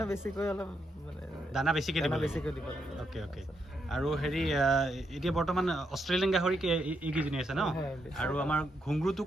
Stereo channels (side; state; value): both; normal; correlation 0.80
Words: বেছিকৈ অলপ মানে দানা বেছিকৈ দিব অ'কে আৰু হেৰি এতিয়া বৰ্তমান অষ্ট্ৰেলিয়ান গাহৰি এইকেইজনী আছে ন আৰু আমাৰ ঘুংগুৰটো